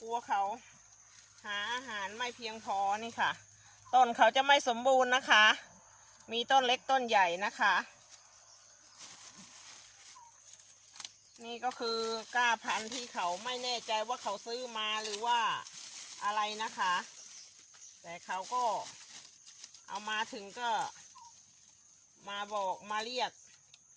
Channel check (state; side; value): identical; both; correlation 1.00